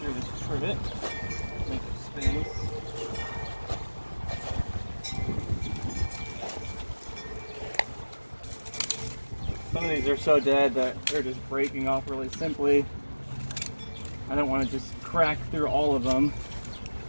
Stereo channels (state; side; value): inverted; both; correlation -1.00